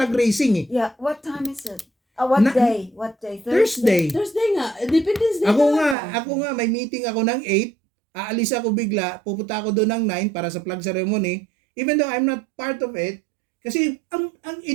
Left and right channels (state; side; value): drops out; left; at 6.0 s